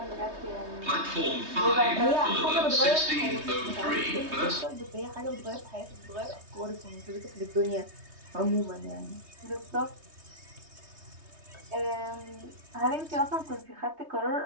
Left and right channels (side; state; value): left; late; 3.2 ms